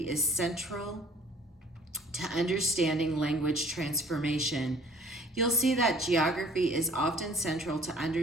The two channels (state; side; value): normal; both; correlation 0.53